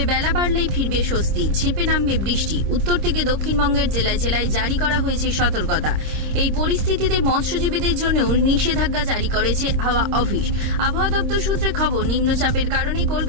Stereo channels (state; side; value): late; left; 26 ms